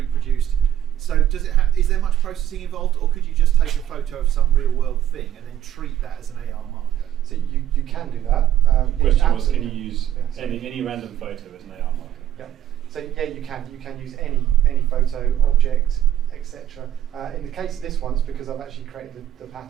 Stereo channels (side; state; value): left; quieter; 11.3 dB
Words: So does it is there much processing involved, or could you just take a photo of some real world thing and then treat that as an AR marker? So you can do that. The question was, can you absolutely- use yeah, any random photo as an AR marker? Yeah. So yeah, you can. You can use any photo, object, etc. In the case of this one, it's because I've actually created the